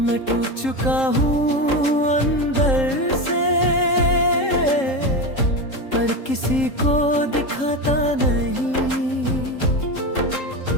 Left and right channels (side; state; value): right; late; 3.8 ms